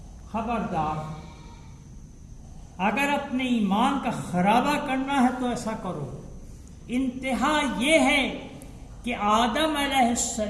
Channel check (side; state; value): both; identical; correlation 1.00